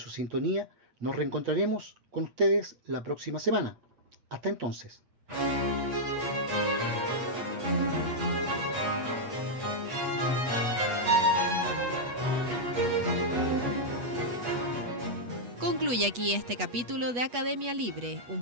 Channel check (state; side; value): late; left; 8.3 ms